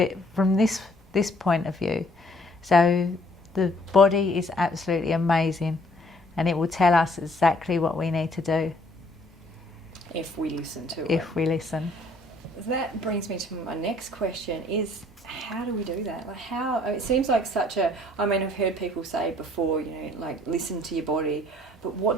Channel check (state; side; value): normal; both; correlation 0.61